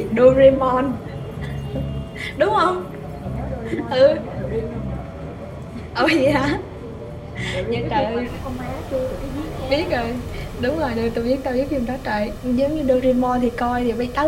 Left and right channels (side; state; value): both; identical; correlation 1.00